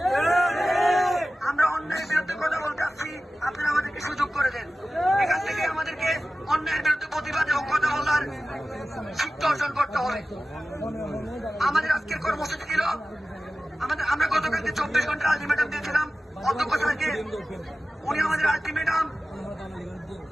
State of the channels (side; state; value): both; normal; correlation 0.95